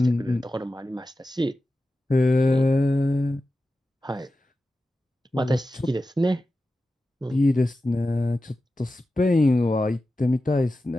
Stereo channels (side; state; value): both; normal; correlation 0.93